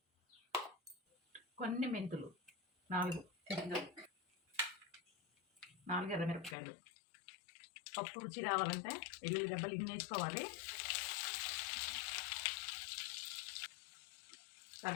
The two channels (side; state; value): right; drops out; at 6.6 s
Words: కొన్ని మెంతులు, 4 గింజలు, 4 ఎర్రమిరపకాయలు. పప్పు రుచి రావాలంటే వెల్లుల్లి రెబ్బలు ఇన్ని వేసుకోవాలి.